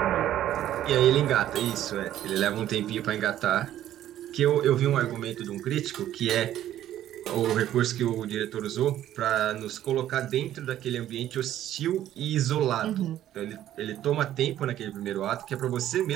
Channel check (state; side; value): quieter; left; 12.3 dB